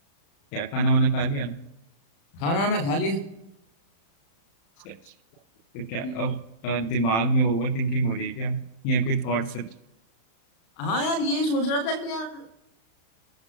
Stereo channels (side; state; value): right; late; 36 ms